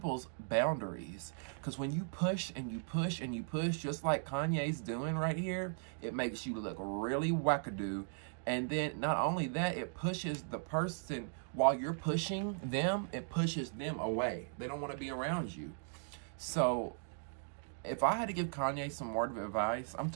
boundaries. Because when you push and you push and you push, just like Kanye's doing right here, it makes you look really wackadoo. And then not only that, it pushes the person, while you're pushing them, it pushes them away. They don't want to be around you. So if I had to give Kanye some word of advice, I'm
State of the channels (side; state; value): left; silent; digital silence